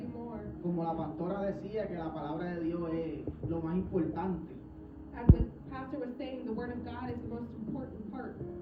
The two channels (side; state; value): both; identical; correlation 1.00